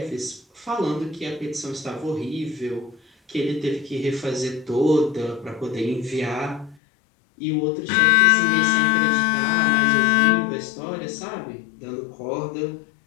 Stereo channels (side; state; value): right; drops out; at 6.8 s